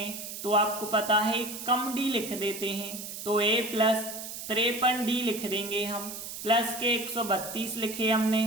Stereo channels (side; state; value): right; noise; hiss, 9 dB below the sound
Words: तो आपको पता है कम डी लिख देते हैं। तो a प्लस 53 डी लिख देंगे हम, प्लस के 132 लिखे